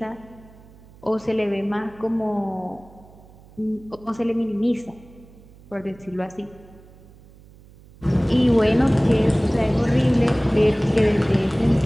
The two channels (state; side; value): noise; right; hum, 24 dB below the sound